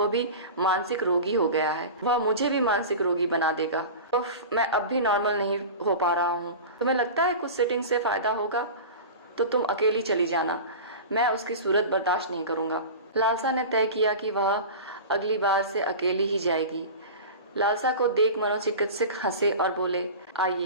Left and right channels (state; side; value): inverted; both; correlation -0.32